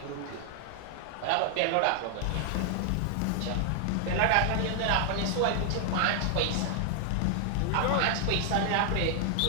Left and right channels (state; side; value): different; both; correlation 0.00